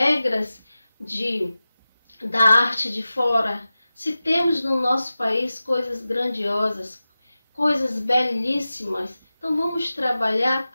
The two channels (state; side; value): inverted; both; correlation -0.95